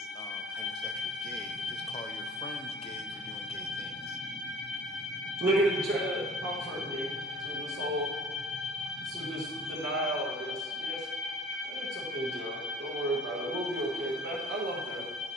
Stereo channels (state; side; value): normal; both; correlation 0.47